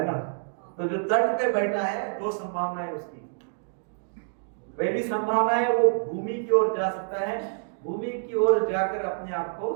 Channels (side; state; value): left; silent; digital silence